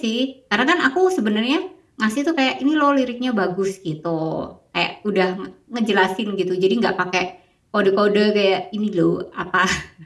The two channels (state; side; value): identical; both; correlation 1.00